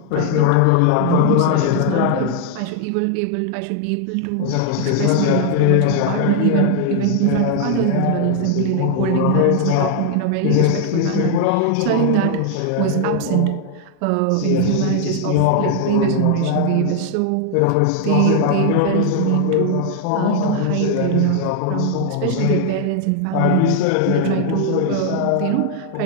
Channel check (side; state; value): both; different; correlation 0.00